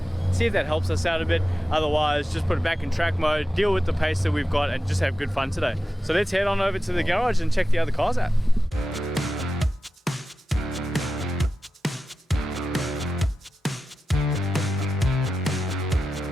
See if that helps us out a bit. Otherwise, just put it back in track mode, deal with the pace that we've got, and just have good fun today. So let's head on over to the garage and check the other cars out.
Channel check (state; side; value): normal; both; correlation 0.92